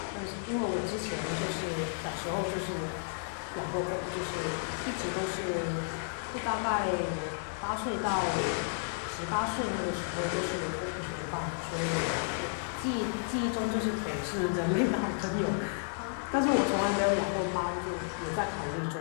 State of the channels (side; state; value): right; silent; 56 dB below the other